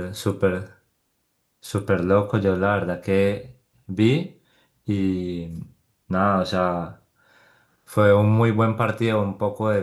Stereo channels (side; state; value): both; identical; correlation 1.00